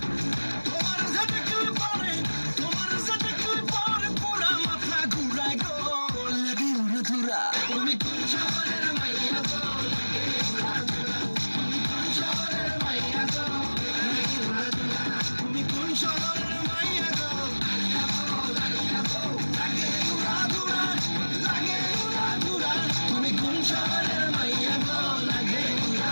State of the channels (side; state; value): both; inverted; correlation -1.00